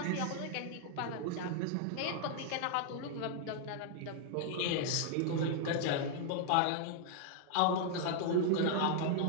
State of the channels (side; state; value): both; different; correlation 0.00